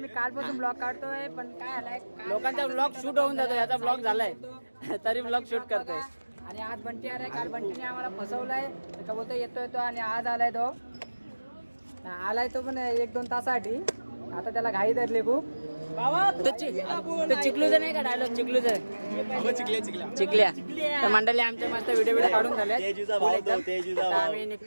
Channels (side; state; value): both; inverted; correlation -1.00